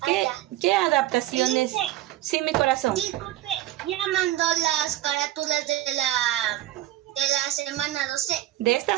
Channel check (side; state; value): left; quieter; 14.7 dB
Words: ¿Qué adaptaciones? Sí, mi corazón. Disculpe, ya mandó las carátulas de la semana 12. De esta